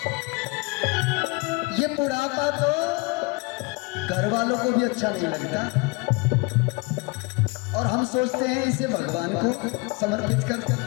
ये बुढ़ापा तो घर वालों को भी अच्छा नहीं लगता, और हम सोचते हैं इसे भगवान को समर्पित कर।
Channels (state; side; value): quieter; right; 27.5 dB